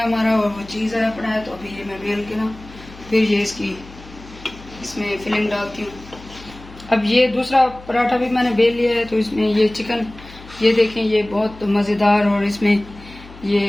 हमारा, और वो चीज़ आया पड़ा है। तो अभी ये मैं बेल के ना फिर ये इसमें फिलिंग डालती हूँ। अब ये दूसरा पराठा भी मैंने बेल लिया है, तो इसमें ये चिकन, ये देखें, ये बहुत मज़ेदार, और इसमें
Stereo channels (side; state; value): left; noise; hum, 19 dB below the sound